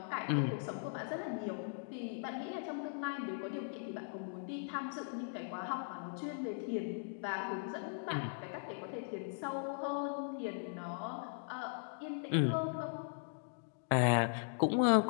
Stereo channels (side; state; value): right; silent; digital silence